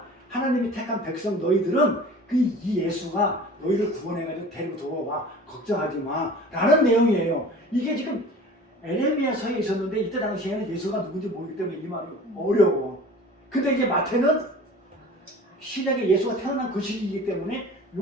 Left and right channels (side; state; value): both; normal; correlation 0.42